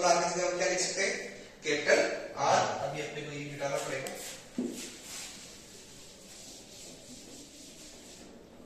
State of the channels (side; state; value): both; identical; correlation 1.00